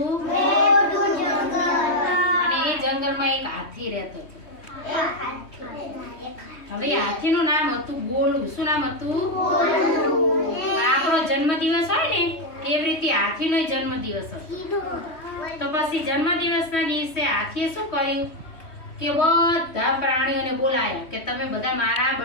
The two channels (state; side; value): late; right; 3.1 ms